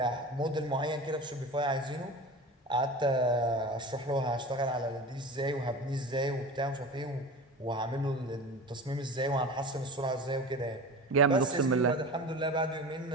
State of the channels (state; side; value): normal; both; correlation 0.32